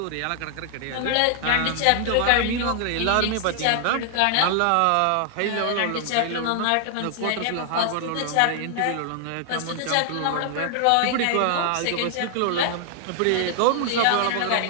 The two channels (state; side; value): different; both; correlation 0.00